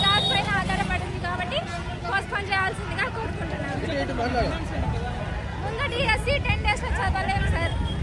జాబ్ పైన ఆధారపడింది కాబట్టి పోస్ట్పోన్ చేయాల్సిందిగా కోరుకుంటున్నాను. ముందు డిఎస్సి 10 days లో చదవలేము సార్.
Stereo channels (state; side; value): identical; both; correlation 1.00